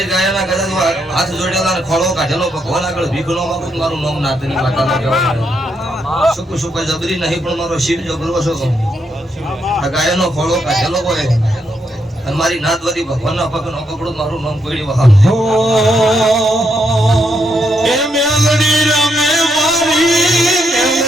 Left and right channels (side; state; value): both; normal; correlation 0.78